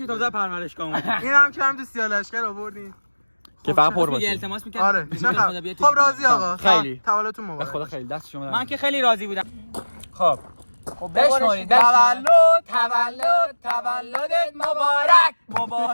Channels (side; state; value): both; inverted; correlation -1.00